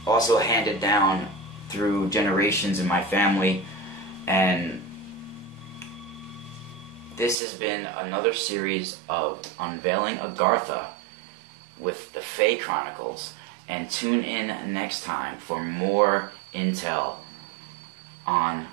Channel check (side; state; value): left; drops out; at 7.4 s